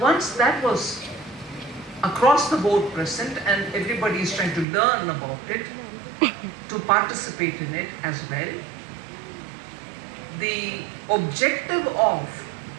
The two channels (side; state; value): left; drops out; at 4.7 s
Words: that was across the board present and everybody is trying to learn about it, to participate in it as well, the objective of,